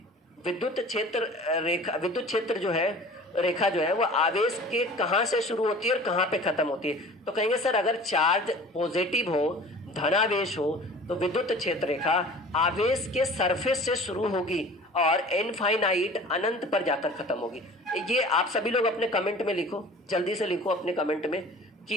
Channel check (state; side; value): normal; both; correlation 0.43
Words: विद्युत क्षेत्र रेखा, विद्युत क्षेत्र जो है रेखा जो है वो आवेश के कहाँ से शुरू होती है और कहाँ पे खत्म होती है। तो कहेंगे सर अगर चार्ज पॉजिटिव हो, धनावेश हो, तो विद्युत क्षेत्र रेखा आवेश के सरफेस से शुरू होगी और इनफाइनाइट अनंत पर जाकर खत्म होगी। ये आप सभी लोग अपने कमेंट में लिखो, जल्दी से लिखो अपने कमेंट में